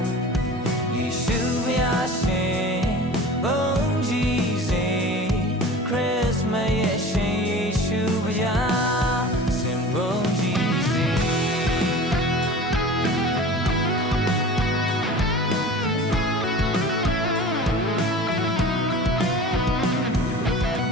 ယေရှုဘုရားရှင်ဘုန်းကြီးစေခရစ်မတ်ရဲ့ရှင်ယေရှုဘုရားစင်ဘုန်းကြီးစေ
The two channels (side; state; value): both; normal; correlation 0.39